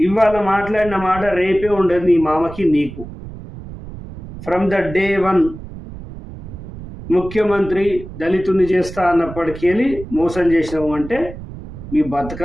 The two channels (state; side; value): noise; right; rumble, 13 dB below the sound